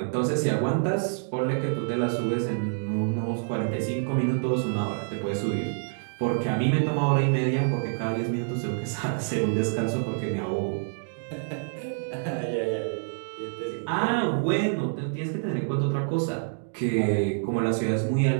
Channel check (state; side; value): silent; left; digital silence